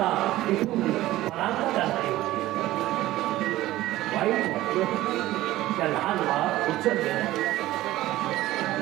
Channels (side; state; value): left; quieter; 16.0 dB